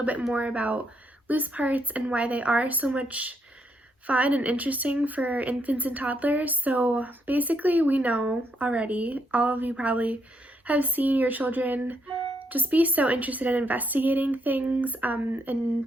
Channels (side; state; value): both; normal; correlation 0.76